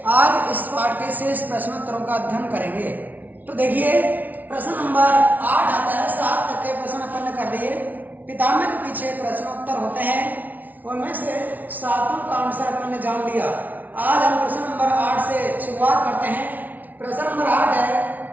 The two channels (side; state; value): left; late; 0.078 ms